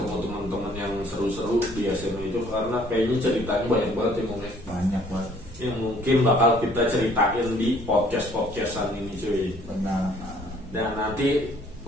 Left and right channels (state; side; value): noise; left; rumble, 21 dB below the sound